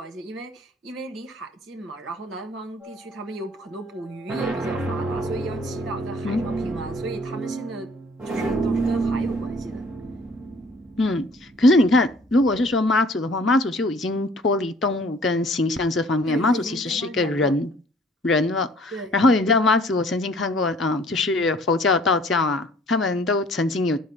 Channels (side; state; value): both; normal; correlation 0.55